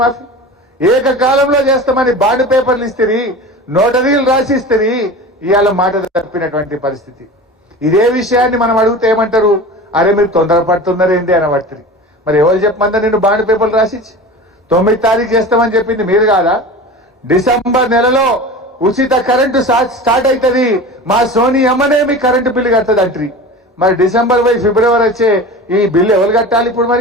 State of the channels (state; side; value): normal; both; correlation 0.33